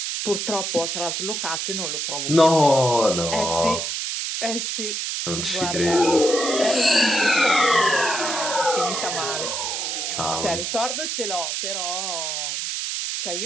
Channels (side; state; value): right; noise; hiss, 2 dB below the sound